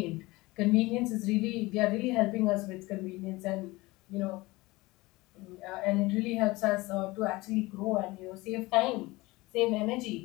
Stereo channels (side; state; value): right; quieter; 21.3 dB